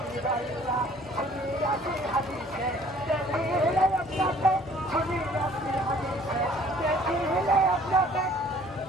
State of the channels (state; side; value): normal; both; correlation 0.55